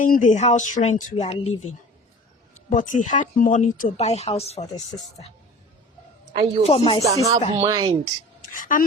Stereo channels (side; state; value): both; normal; correlation 0.41